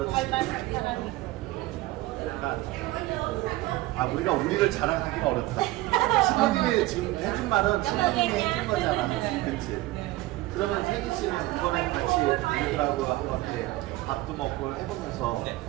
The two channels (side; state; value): left; quieter; 18.1 dB